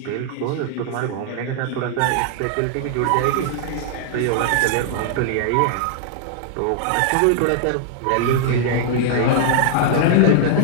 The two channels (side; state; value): both; different; correlation -0.01